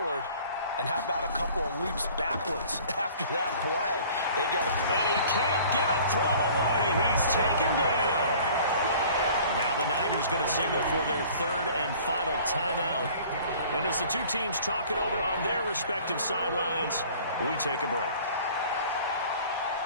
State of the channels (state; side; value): inverted; both; correlation -0.49